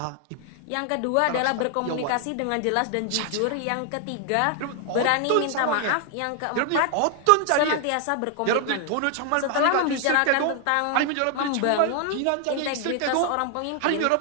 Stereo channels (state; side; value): different; both; correlation 0.00